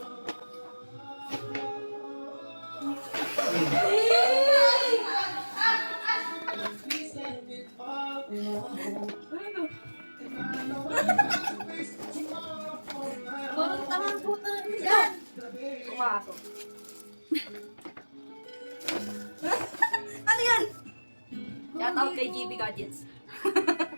Parang tamang puta yan! Pumasok. Ano yan? Shout out kay GB Gadgets.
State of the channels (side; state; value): both; inverted; correlation -1.00